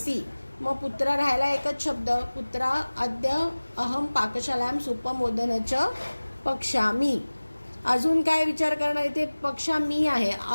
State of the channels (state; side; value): inverted; both; correlation -1.00